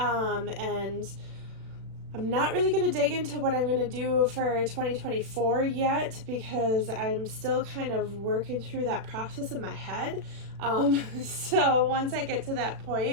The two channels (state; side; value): late; left; 36 ms